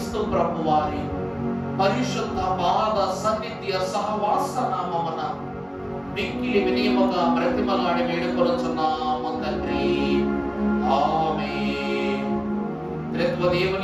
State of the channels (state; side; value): identical; both; correlation 1.00